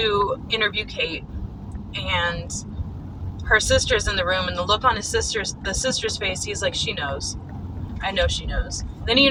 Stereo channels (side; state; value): both; identical; correlation 1.00